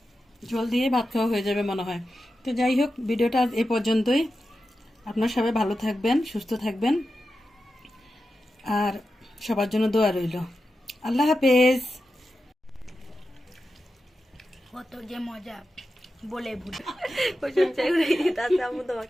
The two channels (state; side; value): normal; both; correlation 0.91